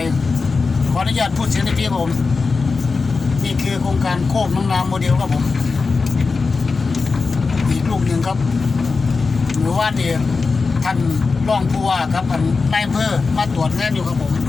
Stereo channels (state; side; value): quieter; right; 4.4 dB